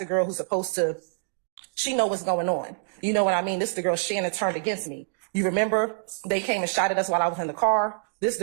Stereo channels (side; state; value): left; silent; digital silence